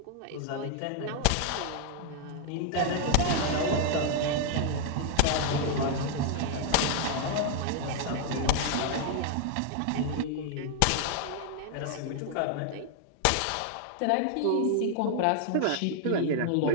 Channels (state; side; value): different; both; correlation 0.00